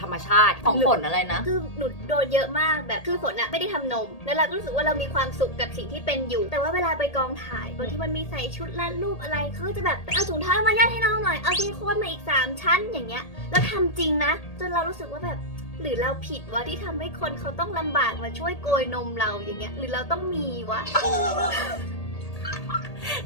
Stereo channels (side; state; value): right; late; 1.8 ms